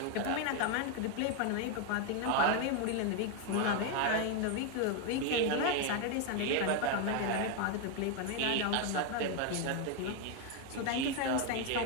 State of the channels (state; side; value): different; both; correlation 0.01